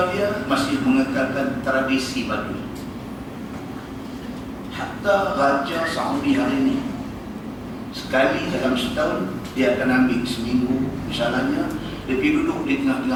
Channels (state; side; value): identical; both; correlation 1.00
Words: dia masih mengekalkan tradisi Badui. Hatta Raja Saudi hari ini, sekali dalam setahun dia akan ambil seminggu misalnya, dia pergi duduk di